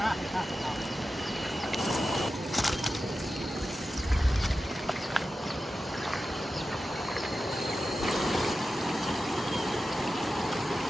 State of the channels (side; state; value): both; normal; correlation 0.92